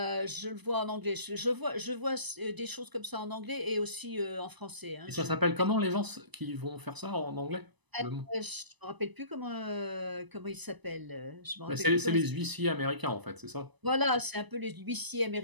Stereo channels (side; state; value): left; late; 1.0 ms